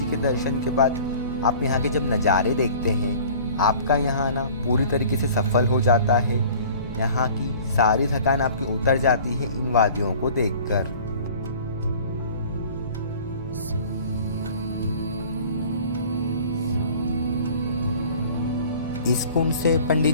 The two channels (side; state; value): both; inverted; correlation -0.47